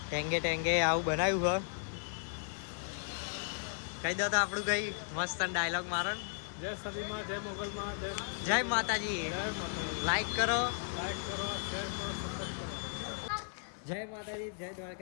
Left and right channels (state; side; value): silent; right; digital silence